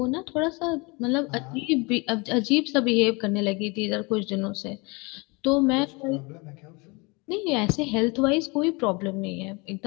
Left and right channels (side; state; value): right; quieter; 27.9 dB